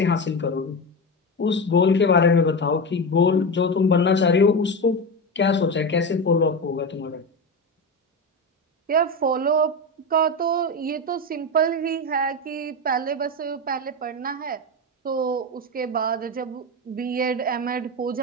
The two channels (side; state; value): both; normal; correlation 0.18